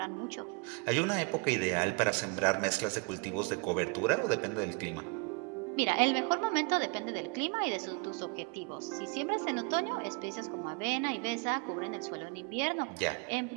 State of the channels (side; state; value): left; quieter; 33.5 dB